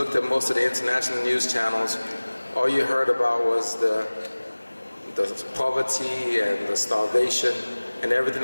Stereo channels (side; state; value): both; inverted; correlation -1.00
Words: at most of the international news channels, all you heard about was the poverty and the starvation and